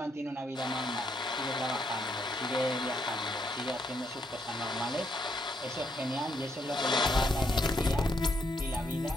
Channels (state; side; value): normal; both; correlation 0.75